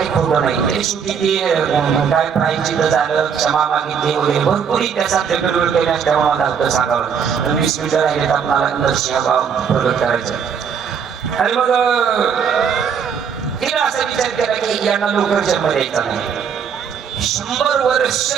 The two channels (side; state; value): left; quieter; 7.1 dB